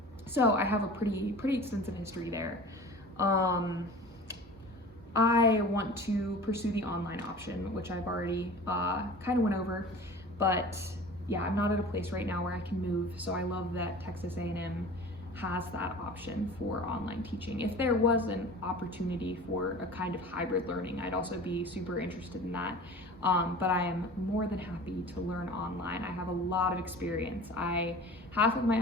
So I have a pretty extensive history there. I want to pursue the online option, which I've already kind of went over, but yeah, I'm not at a place right now where I can move, so I love that Texas A&M has that option for online teaching. If there was an opportunity for a kind of hybrid learning, I'd also be super interested in that. But I am more than happy to learn online. I have a lot of experience. Half of my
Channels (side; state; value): both; normal; correlation 0.40